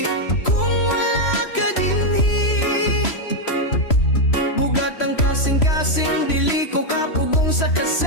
kung wala ka dinhi. Bugat ang kasing-kasing, dili ko kapugong sa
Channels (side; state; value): right; late; 3.0 ms